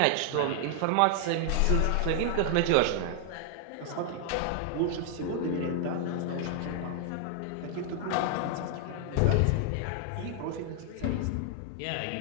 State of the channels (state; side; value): different; both; correlation 0.00